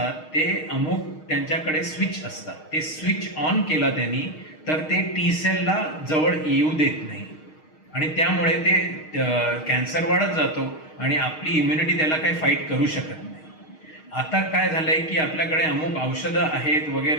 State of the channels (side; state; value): right; late; 6.4 ms